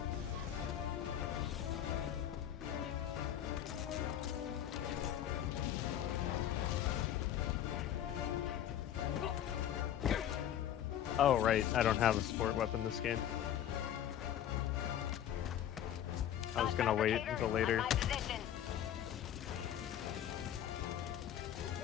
Oh, right. I don't have a support weapon this game. just gonna wait until later. My position.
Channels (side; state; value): right; quieter; 10.7 dB